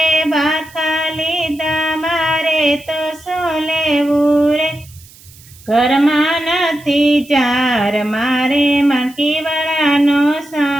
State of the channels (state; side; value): noise; right; hiss, 23 dB below the sound